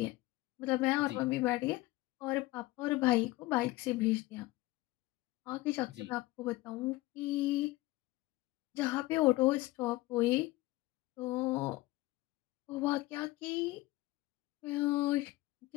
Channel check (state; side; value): quieter; right; 19.1 dB